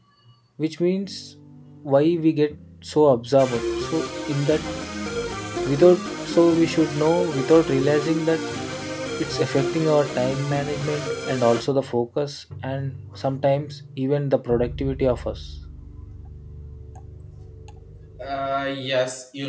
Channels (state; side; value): identical; both; correlation 1.00